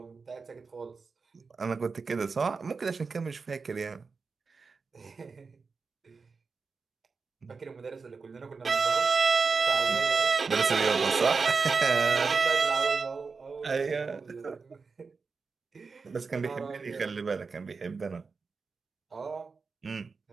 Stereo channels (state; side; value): quieter; left; 4.7 dB